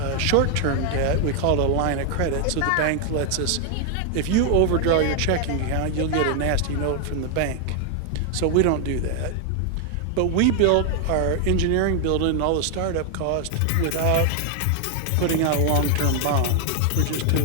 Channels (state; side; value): different; both; correlation 0.00